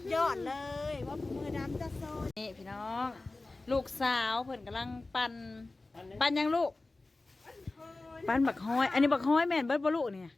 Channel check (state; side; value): quieter; right; 3.2 dB